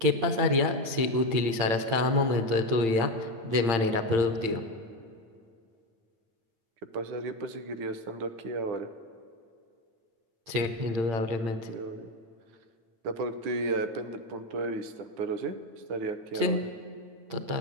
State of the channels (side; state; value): left; late; 8.8 ms